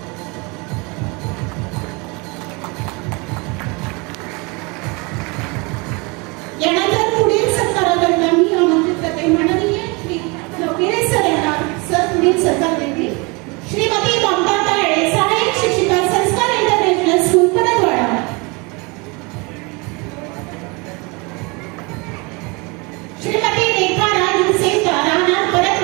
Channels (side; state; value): left; quieter; 28.3 dB